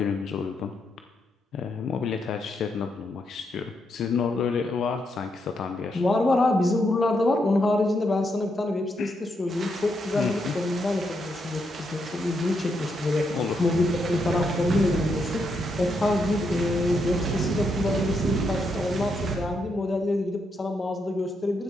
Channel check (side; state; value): both; normal; correlation 0.80